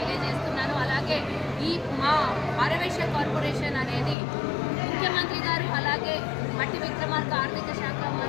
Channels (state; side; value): drops out; right; at 4.2 s